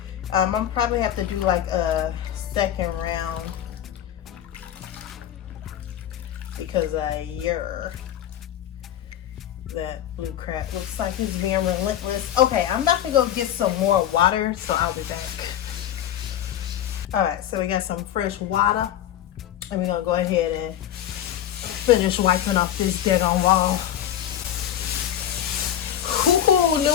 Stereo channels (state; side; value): quieter; right; 10.9 dB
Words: I'm going to probably have to do like a second round because that blue crap looks like it's being relentless. Okay, I'm about to go get some more water, so I'll be back. All right, so we got some fresh water, and we're gonna go ahead and finish wiping off this dead on wall. Ooh,